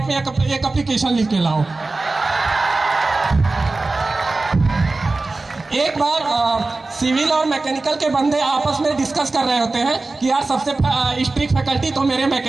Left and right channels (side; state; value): left; quieter; 3.4 dB